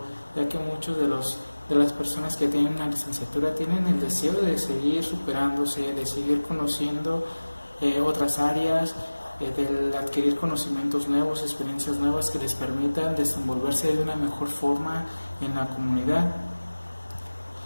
ya que muchos de las personas que tienen una licenciatura tienen el deseo de seguir superándose, de seguir conociendo otras áreas, de adquirir conocimientos nuevos, experiencias nuevas que les permitan desenvolverse de una mejor forma en la comunidad.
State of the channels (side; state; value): both; inverted; correlation -1.00